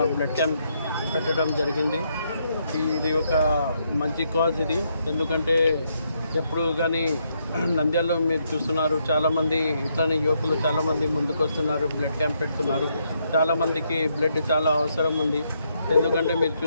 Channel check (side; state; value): both; inverted; correlation -0.76